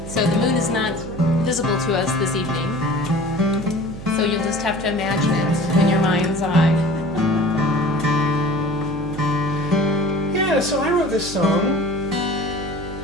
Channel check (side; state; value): right; noise; hum, 11 dB below the sound